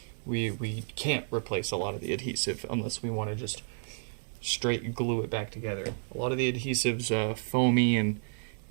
we can't replace a lot of the adhesive unless we want to just straight glue it back together. A lot of the adhesive's foamy and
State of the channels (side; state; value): left; silent; digital silence